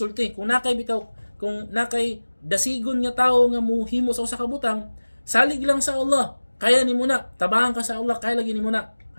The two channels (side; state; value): both; inverted; correlation -1.00